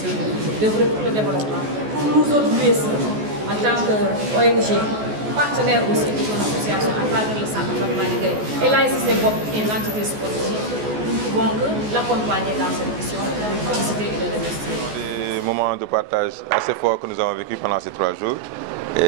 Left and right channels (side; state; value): left; late; 14 ms